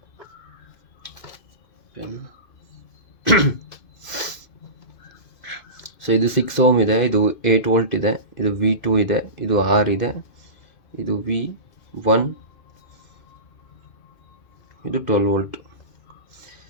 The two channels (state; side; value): late; right; 2.5 ms